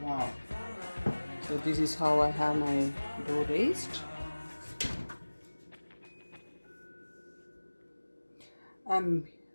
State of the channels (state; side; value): inverted; both; correlation -1.00